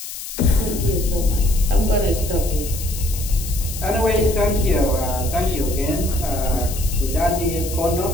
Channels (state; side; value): noise; left; hiss, 9 dB below the sound